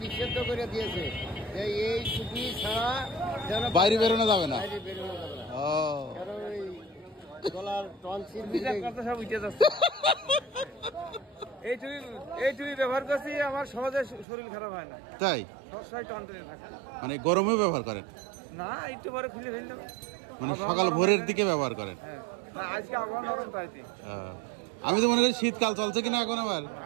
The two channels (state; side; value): drops out; left; at 14.2 s